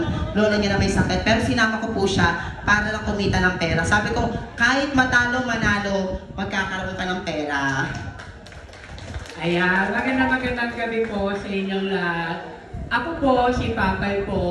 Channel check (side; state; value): both; identical; correlation 1.00